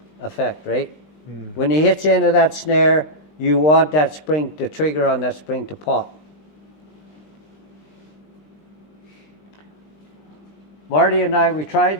effect, right? When he hits into that snare, you want that spring, the trigger on that spring to pop. Marty and I, we tried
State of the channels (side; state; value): right; late; 20 ms